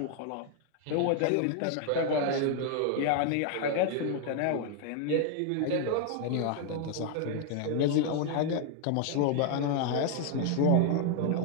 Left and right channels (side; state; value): both; different; correlation 0.00